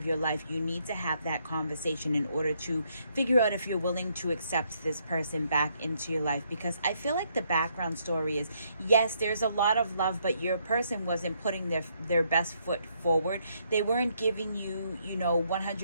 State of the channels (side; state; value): both; inverted; correlation -0.73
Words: your life, you need to have that conversation in order to figure out if you're willing to accept this person back into your life. Because I feel like the background story is, yes, there's a lot of love, but your person wasn't putting their best foot forward. They weren't giving you